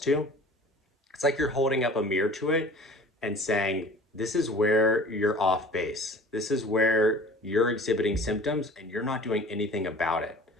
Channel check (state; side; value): normal; both; correlation 0.45